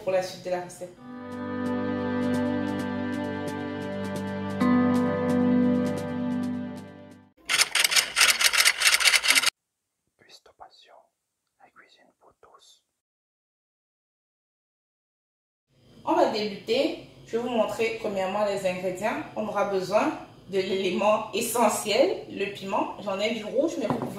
la suite de la recette. On va débuter. Je vais vous montrer premièrement les ingrédients. On aura besoin de l'élément essentiel, le piment. J'en ai du rouge, mais vous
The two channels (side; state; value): both; identical; correlation 1.00